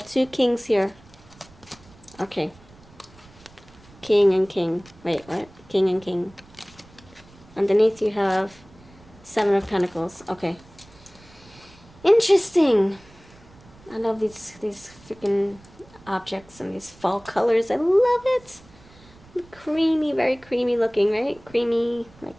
2 kings here. Okay. King and king. Wait, what? King and king. Underneath you have 7 of Pentacles. Okay. Interesting. I love these freaking objects and these fall colors. I love it. Creamy, very creamy looking, right? Creamy,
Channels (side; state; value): right; noise; rumble, 25 dB below the sound